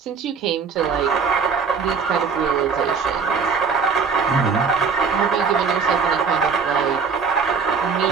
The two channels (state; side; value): quieter; left; 5.6 dB